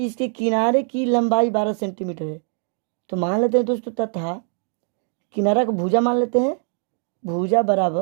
इसके किनारे की लंबाई 12 सेंटीमीटर है, तो मान लेते हैं दोस्तों तथा किनारा को भुजा मान लेते हैं, भुजा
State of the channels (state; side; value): silent; left; 56 dB below the other